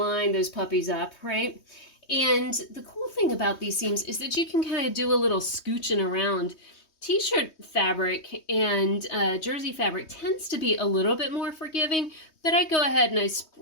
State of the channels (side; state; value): right; late; 3.2 ms